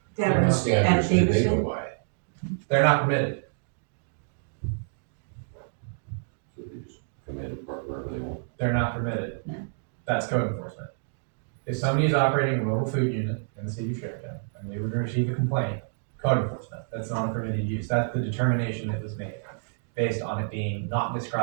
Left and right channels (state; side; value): silent; left; digital silence